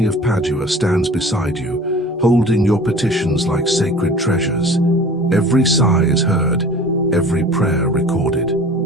of Padua stands beside you, holding your petitions like sacred treasures. Every sigh is heard, every prayer recorded.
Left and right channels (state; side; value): normal; both; correlation 0.43